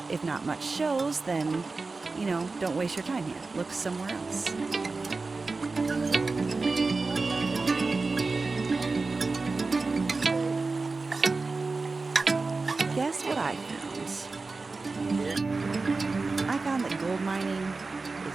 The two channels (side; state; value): left; quieter; 3.8 dB